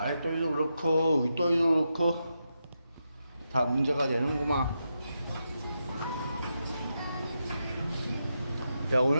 그렇고 윗도리도 그렇고 다 문제가 되는구만. 야,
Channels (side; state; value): both; inverted; correlation -0.86